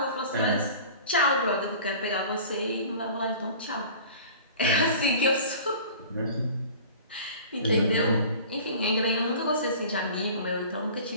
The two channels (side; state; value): both; inverted; correlation -0.42